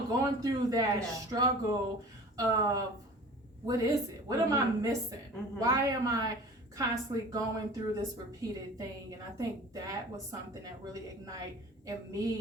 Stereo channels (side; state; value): both; normal; correlation 0.41